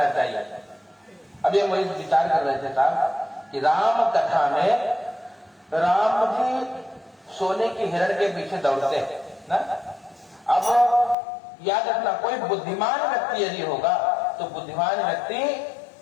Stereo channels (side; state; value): right; drops out; at 11.2 s